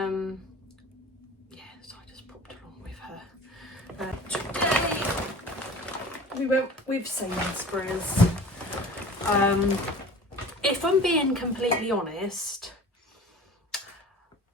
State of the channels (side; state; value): both; normal; correlation 0.41